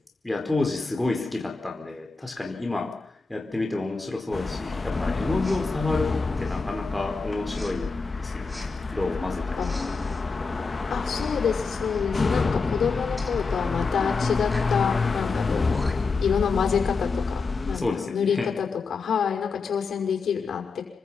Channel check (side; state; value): right; quieter; 4.4 dB